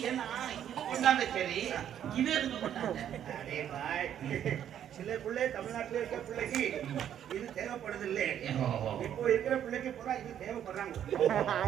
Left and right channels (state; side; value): quieter; left; 10.0 dB